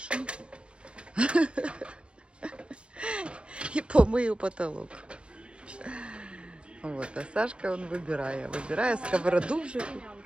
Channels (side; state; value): left; late; 0.057 ms